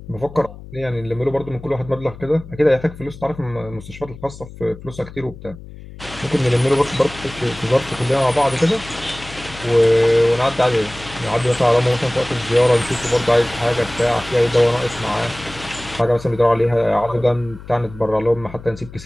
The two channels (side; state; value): left; noise; hum, 16 dB below the sound